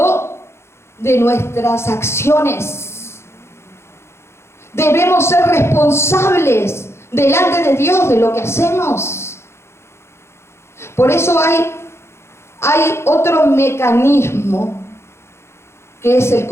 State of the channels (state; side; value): late; right; 0.13 ms